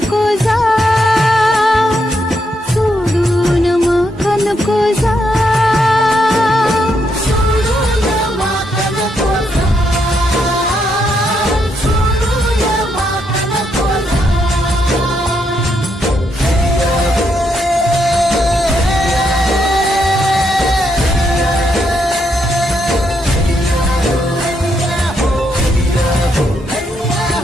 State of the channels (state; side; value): normal; both; correlation 0.78